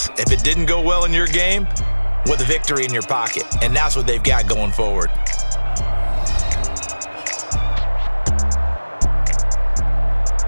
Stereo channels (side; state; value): both; inverted; correlation -1.00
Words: If it didn't go well in your game, with a victory in your pocket. And that's what they've got going forward.